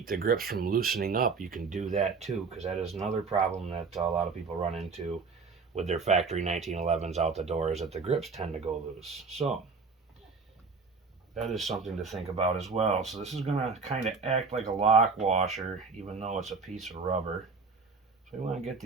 the grips from loosening up, you can do that too, because that is another problem that a lot of people run into with their factory 1911s out the door, is that the grips tend to go loose. So that is something to think about as well. So this is going to kind of act like a lock washer, even though it's a piece of rubber. So we want to get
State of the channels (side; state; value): left; quieter; 4.8 dB